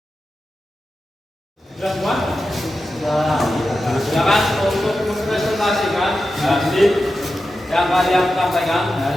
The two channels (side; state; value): both; normal; correlation 0.91